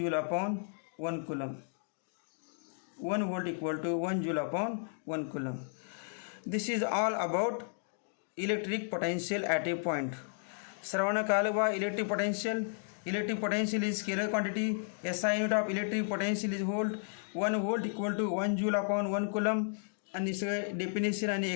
upon 1 coulomb. 1 volt equal to 1 joule upon 1 coulomb. This is all about electric potential at a point. सर्वांना कळलं बा electric potential is scalar quantity. SI unit of electric potential is volt. 1 volt equal to 1 joule upon 1 coulomb. आणि सगळं definition आणि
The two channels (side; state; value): right; silent; digital silence